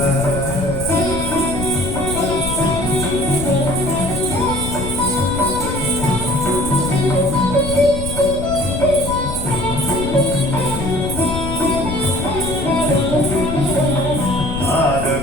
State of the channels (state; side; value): noise; left; rumble, 7 dB below the sound